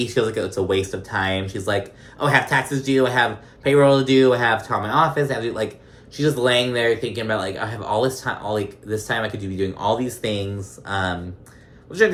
feels like it's a waste of time. She's like, oh, I have taxes due. I have payroll to do. I have to call my office. I have to do, like, she's just laying there thinking about, like, I have all this time. This time I could be doing all these things. Which I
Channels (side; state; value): both; identical; correlation 1.00